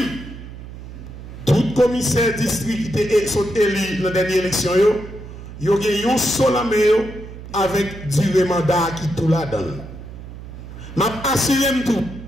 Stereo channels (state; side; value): noise; right; hum, 13 dB below the sound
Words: tout commissaire district qui est élu dans la dernière élection, il y a un seul avec durée mandat qui tout la donne. Je m'assure tout.